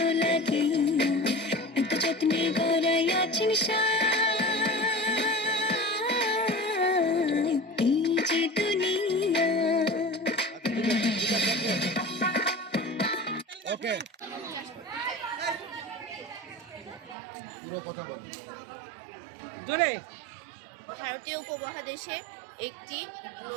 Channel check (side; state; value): left; drops out; at 17.2 s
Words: লাগিয়া এত যত্নে গড়াই আছেন এই যে দুনিয়া। ওকে, পুরো কথা বল। জোরে। ভারতীয় উপমহাদেশে একটি